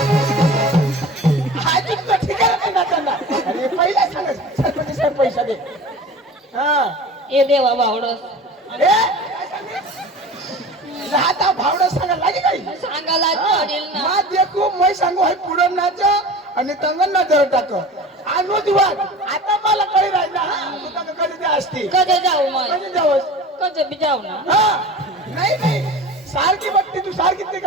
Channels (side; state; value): both; normal; correlation 0.37